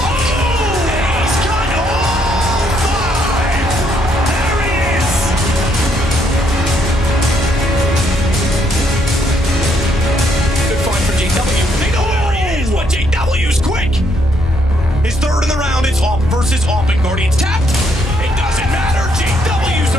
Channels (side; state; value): both; normal; correlation 0.72